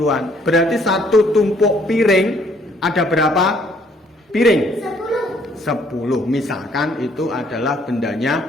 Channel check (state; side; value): normal; both; correlation 0.64